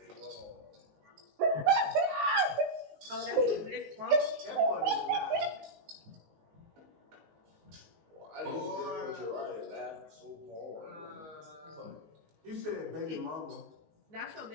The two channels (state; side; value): late; left; 19 ms